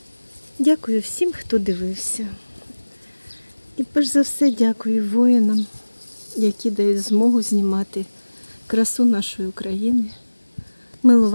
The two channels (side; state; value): both; inverted; correlation -1.00